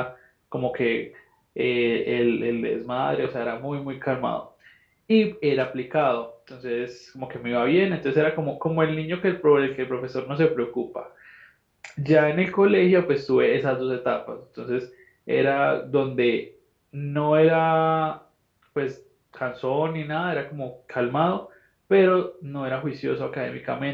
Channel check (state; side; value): identical; both; correlation 1.00